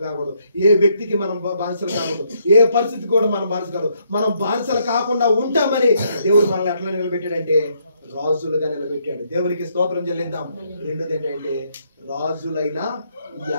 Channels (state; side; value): inverted; both; correlation -0.73